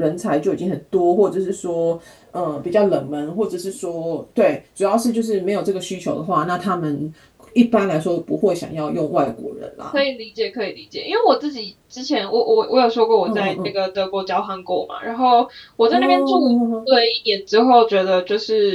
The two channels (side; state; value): both; identical; correlation 1.00